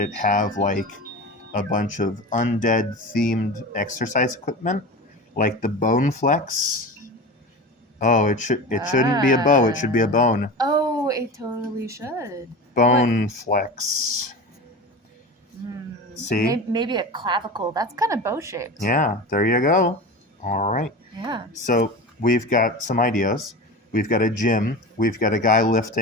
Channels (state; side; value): normal; both; correlation 0.30